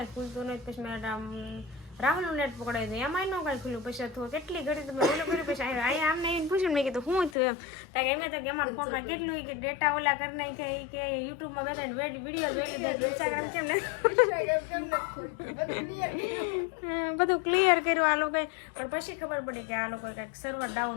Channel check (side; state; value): right; drops out; at 7.4 s